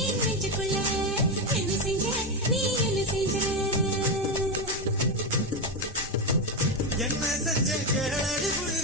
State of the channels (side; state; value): both; normal; correlation 0.10